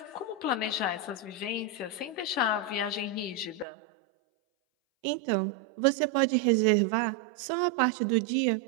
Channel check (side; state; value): left; drops out; at 3.7 s